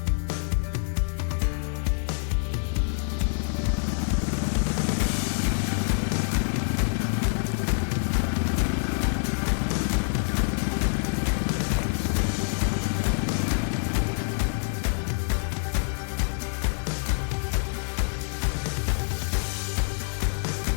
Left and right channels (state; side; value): silent; right; digital silence